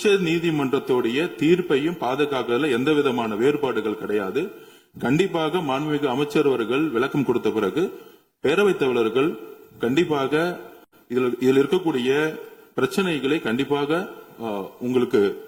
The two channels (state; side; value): identical; both; correlation 1.00